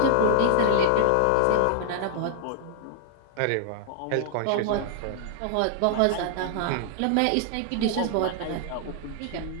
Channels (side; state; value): both; different; correlation 0.00